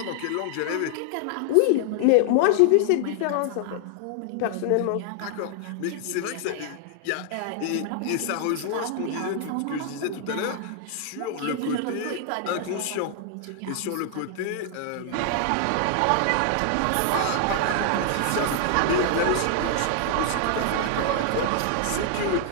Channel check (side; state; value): both; different; correlation 0.00